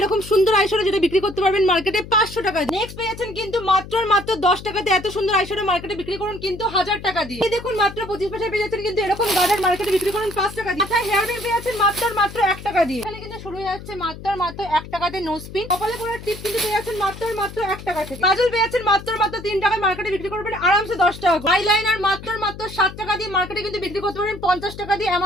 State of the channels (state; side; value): noise; left; hum, 13 dB below the sound